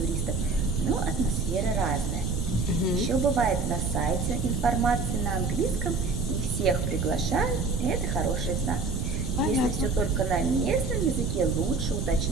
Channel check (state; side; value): noise; right; rumble, 2 dB below the sound